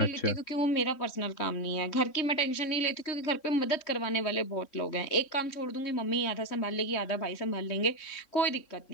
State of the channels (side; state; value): right; late; 3.6 ms